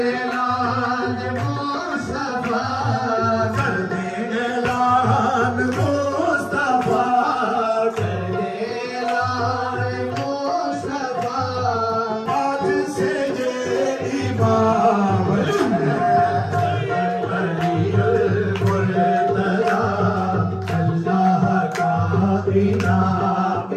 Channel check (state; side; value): identical; both; correlation 1.00